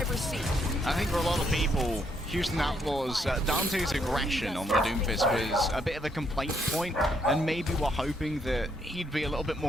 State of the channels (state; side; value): normal; both; correlation 0.73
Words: seat. I think for a lot of people, Houston Outlaws, Dante's aggression on the Doomfist was a bit of a complaint point, and maybe we're hoping that he'd be a little bit